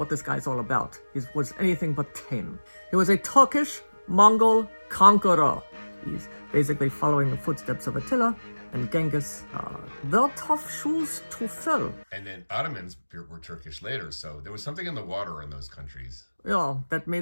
this guy's all about. He was anything but tame. He was a Turkish Mongol conqueror. He's basically following the footsteps of Attila and Genghis. They're tough shoes to fill. And then Ottomans were Turkish later, so there was something in the water in those countries. Yeah, that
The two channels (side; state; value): both; inverted; correlation -1.00